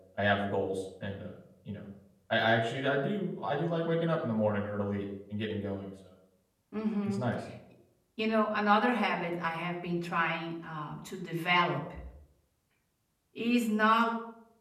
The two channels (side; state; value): both; identical; correlation 1.00